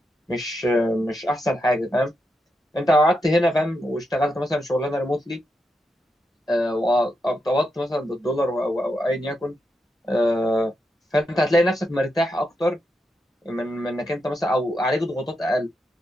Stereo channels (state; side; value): normal; both; correlation 0.84